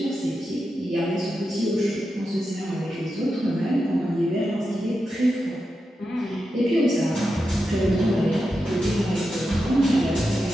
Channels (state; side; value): normal; both; correlation 0.89